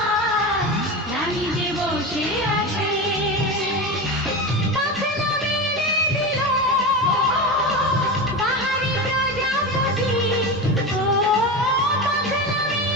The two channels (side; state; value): both; normal; correlation 0.23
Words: রানী যে বসে আছে পাখনা মেলে দিল বাহারি প্রজাপতি ও পাখনা